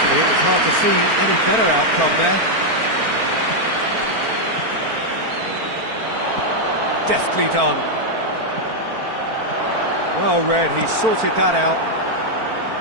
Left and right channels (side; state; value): left; late; 4.4 ms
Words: it was hard to see any better outcome there. Deftly done. Well read, he sorted that out.